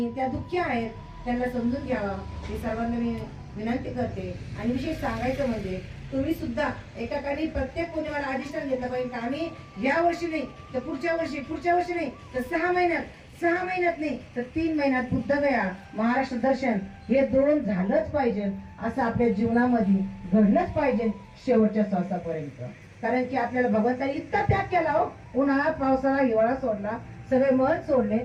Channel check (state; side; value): identical; both; correlation 1.00